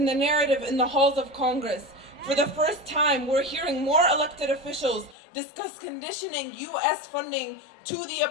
the narrative in the halls of Congress. For the first time, we're hearing more elected officials discuss conditioning U.S. funding to the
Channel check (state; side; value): drops out; right; at 5.2 s